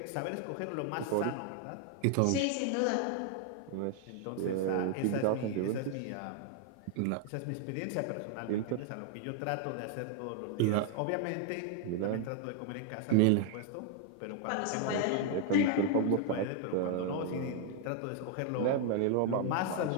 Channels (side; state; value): both; different; correlation 0.00